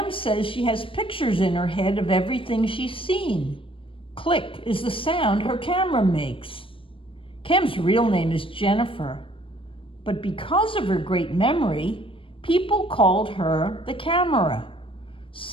says she has pictures in her head of everything she's seen. Click is the sound her camera makes. Cam's real name is Jennifer, but because of her great memory, people called her the camera.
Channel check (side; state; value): right; late; 0.25 ms